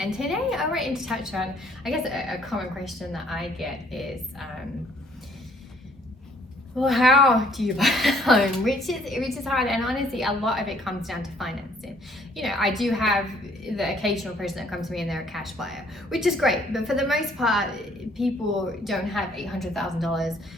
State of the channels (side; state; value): both; normal; correlation 0.62